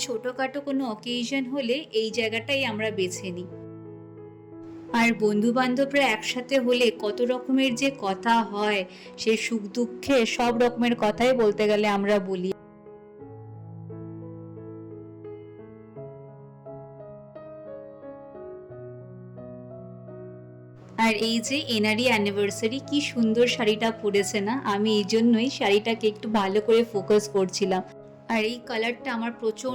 ছোটোখাটো কোনো অকেশন হলে এই জায়গাটাই আমরা বেছে নিই। আর বন্ধু বান্ধবরা একসাথে হলে কত রকমের যে কথা হয়, সে সুখ দুঃখে সব রকমের কথাই বলতে গেলে আমরা বলি। আর এই যে এনারই অ্যানিভার্সারি, কি সুন্দর শাড়িটা পরেছে না, আমি এই জন্যই শাড়িটাকে একটু ভালো করে ফোকাস করছিলাম, আর এই কালারটা আমার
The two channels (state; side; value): identical; both; correlation 1.00